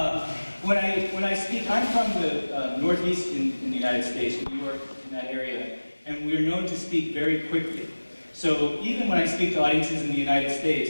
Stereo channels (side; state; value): both; inverted; correlation -1.00